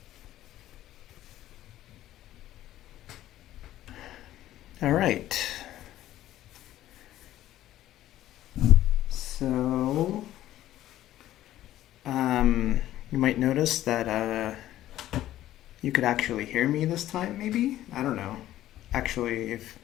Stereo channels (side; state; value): right; quieter; 13.6 dB